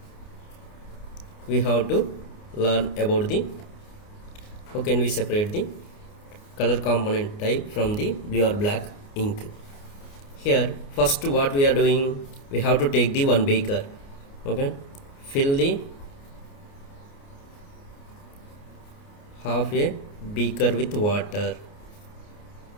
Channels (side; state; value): right; late; 29 ms